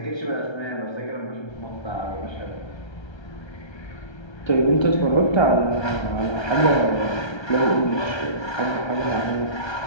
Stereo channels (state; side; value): late; right; 1.3 ms